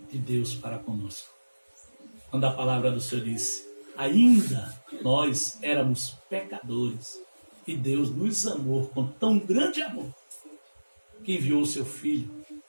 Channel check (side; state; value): both; inverted; correlation -1.00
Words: de Deus para conosco. Quando a palavra do Senhor disse: ainda nós éramos pecadores, e Deus nos amou com tão grande amor, que enviou o seu Filho